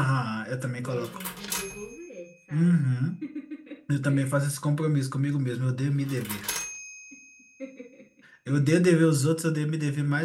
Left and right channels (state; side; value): identical; both; correlation 1.00